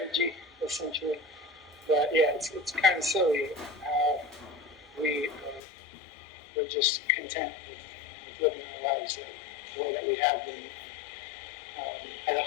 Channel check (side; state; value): right; drops out; at 5.6 s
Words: essentially. But yeah, it's kind of silly how we're just content with living our lives the way that we have been. And